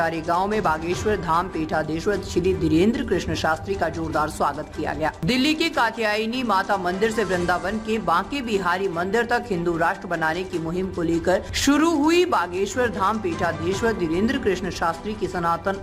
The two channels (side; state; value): both; identical; correlation 1.00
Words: गांव में बागेश्वर धाम पीठाधीश्वर श्री धीरेन्द्र कृष्ण शास्त्री का जोरदार स्वागत किया गया। दिल्ली के कात्यायनी माता मंदिर से वृंदावन के बांके बिहारी मंदिर तक हिंदू राष्ट्र बनाने की मुहिम को लेकर शुरू हुई बागेश्वर धाम पीठाधीश्वर धीरेन्द्र कृष्ण शास्त्री की सनातन